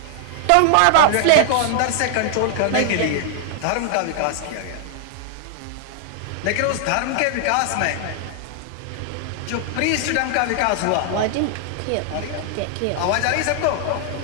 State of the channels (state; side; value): different; both; correlation 0.00